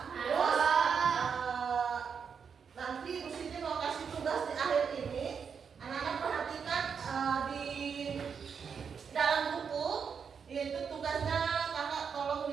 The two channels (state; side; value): quieter; left; 6.5 dB